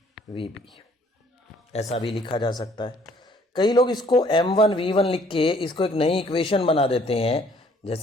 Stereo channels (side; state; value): both; normal; correlation 0.61